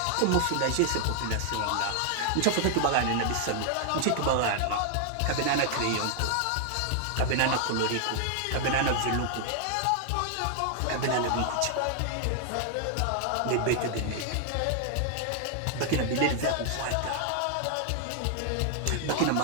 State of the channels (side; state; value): both; different; correlation 0.00